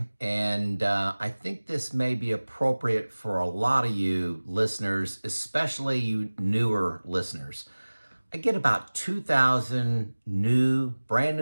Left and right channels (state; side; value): inverted; both; correlation -1.00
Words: and I think this may be appropriate for a lot of you listeners, especially you newer listeners. I get about 2,000 brand